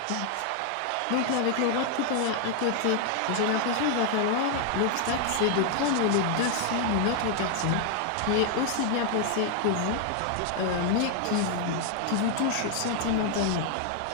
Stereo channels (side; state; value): both; different; correlation 0.00